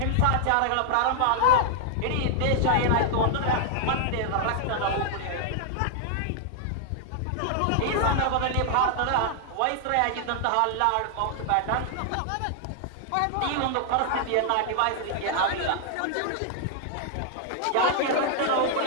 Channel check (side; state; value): both; different; correlation 0.00